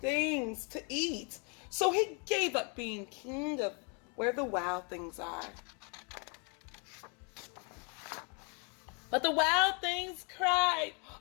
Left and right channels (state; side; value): quieter; right; 35.8 dB